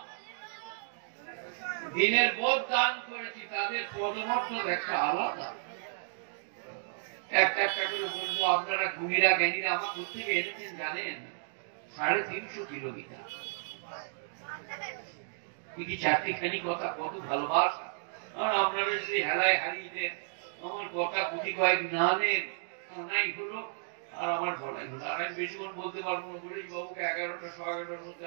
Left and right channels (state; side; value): silent; left; digital silence